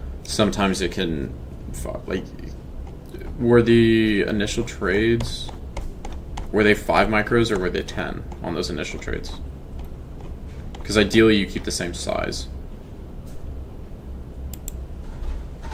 sometimes it can, like, were the initial trades, were they 5 micros or were they 10 on those initial trades? Because ideally you keep the same size.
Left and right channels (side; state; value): both; identical; correlation 1.00